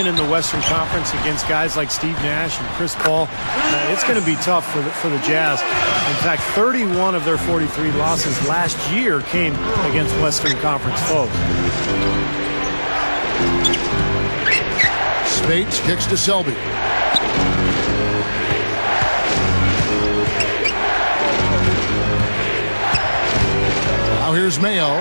in the Western Conference against guys like Steve Nash and Chris Paul, it's going to be tough for the Jazz. In fact, 31 of their 43 losses last year came against Western Conference foes. Spates kicks to Selby. Now here's Mayo.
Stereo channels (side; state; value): both; inverted; correlation -1.00